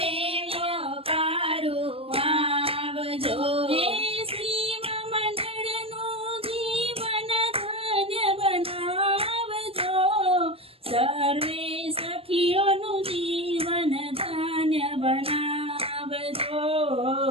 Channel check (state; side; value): late; left; 0.28 ms